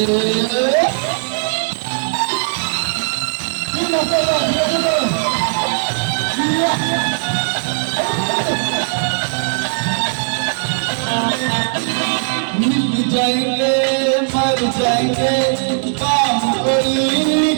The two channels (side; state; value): left; silent; 56 dB below the other